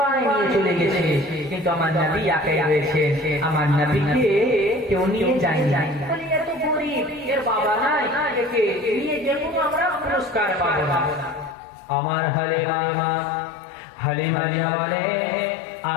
নিয়ে চলে গেছে, কিন্তু আমার নবী একাই রয়েছে। আমার নবীকে কেউ নিয়ে যায়নি। এত গরিব, এর বাবা নাই, একে নিয়ে গেলে আমরা পুরস্কার পাবো না। আমার হালিমা জামালে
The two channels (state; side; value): drops out; right; at 11.6 s